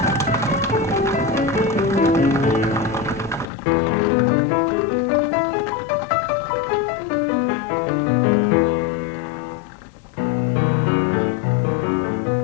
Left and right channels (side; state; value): right; drops out; at 3.5 s